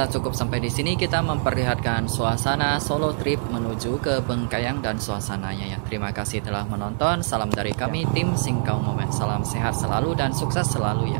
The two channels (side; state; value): left; silent; digital silence